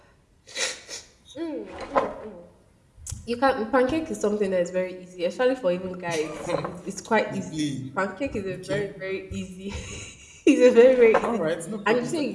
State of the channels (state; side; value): identical; both; correlation 1.00